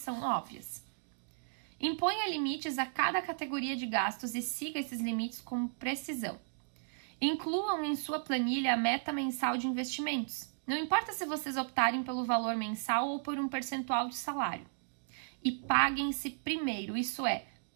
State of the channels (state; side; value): silent; left; digital silence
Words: óbvias. Imponha limites a cada categoria de gastos e siga esses limites com precisão. Incluam em sua planilha a meta mensal de investimentos. Não importa se vocês optarem pelo valor mensal ou por um percentual de salário. E paguem-se primeiro, isso é,